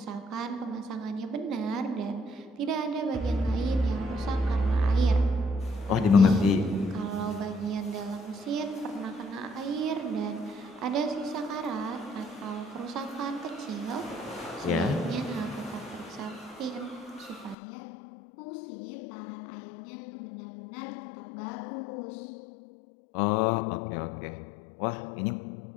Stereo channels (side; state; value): right; drops out; at 17.6 s